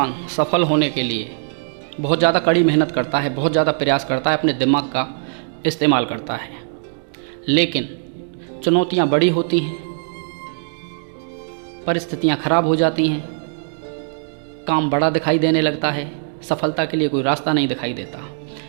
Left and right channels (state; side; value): silent; left; digital silence